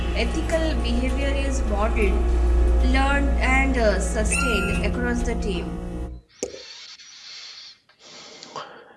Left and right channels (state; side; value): identical; both; correlation 1.00